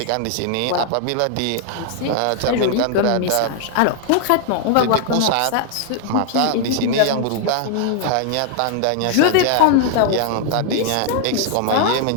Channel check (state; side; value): different; both; correlation 0.00